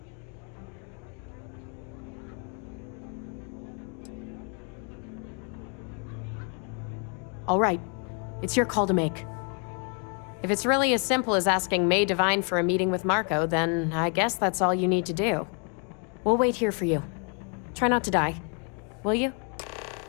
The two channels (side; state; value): right; quieter; 39.0 dB